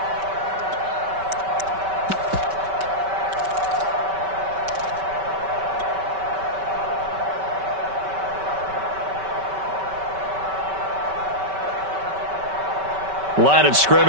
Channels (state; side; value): late; left; 5.2 ms